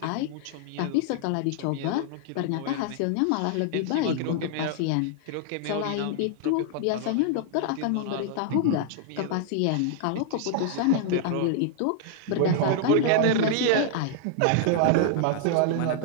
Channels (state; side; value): different; both; correlation -0.01